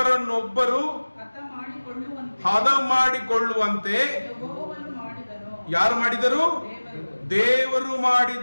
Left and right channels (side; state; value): both; inverted; correlation -1.00